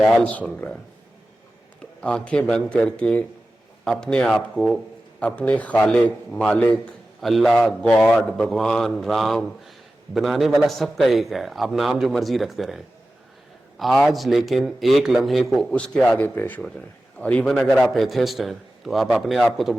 سن رہا ہے. تو آنکھیں بند کر کے اپنے آپ کو اپنے خالق, مالک, اللہ, گاڈ, بھگوان, رام, بنانے والا سب کا ایک ہے. آپ نام جو مرضی رکھتے رہیں آج, لیکن ایک لمحے کو اس کے آگے پیش ہو جائیں. اور ایون اگر آپ ایتھسٹ ہیں تو آپ اپنے آپ کو تو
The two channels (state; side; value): normal; both; correlation 0.94